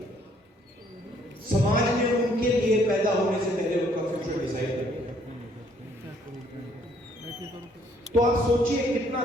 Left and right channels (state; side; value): normal; both; correlation 0.65